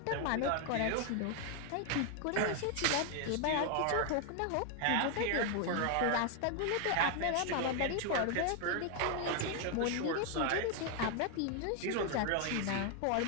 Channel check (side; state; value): both; different; correlation 0.01